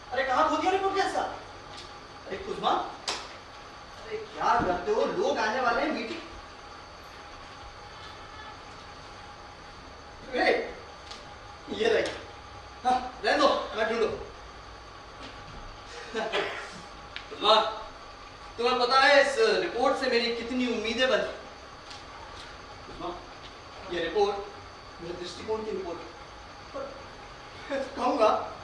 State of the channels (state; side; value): identical; both; correlation 1.00